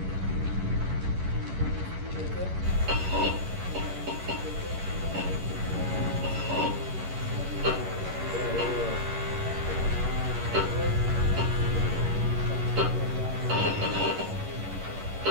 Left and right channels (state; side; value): late; left; 11 ms